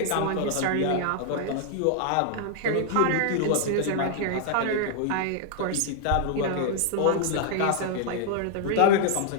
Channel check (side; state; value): both; different; correlation 0.00